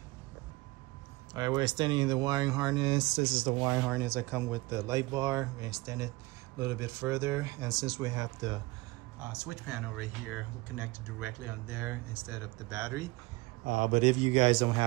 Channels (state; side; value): quieter; left; 22.3 dB